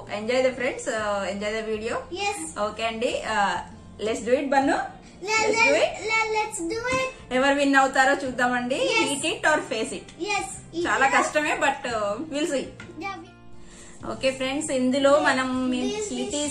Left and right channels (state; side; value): identical; both; correlation 1.00